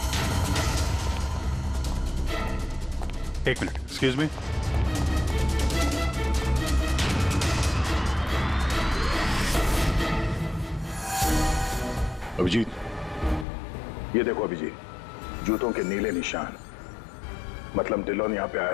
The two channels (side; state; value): right; drops out; at 13.5 s